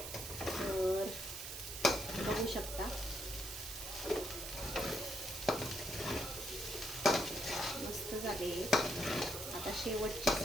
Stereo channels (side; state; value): right; noise; hiss, 7 dB below the sound